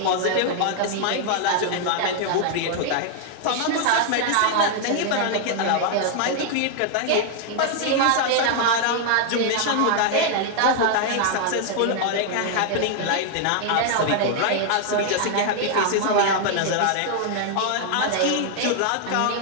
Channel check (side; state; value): both; different; correlation 0.00